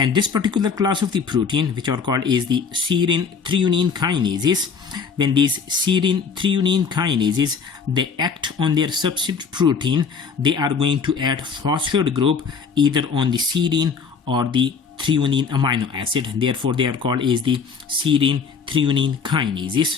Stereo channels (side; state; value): right; quieter; 5.8 dB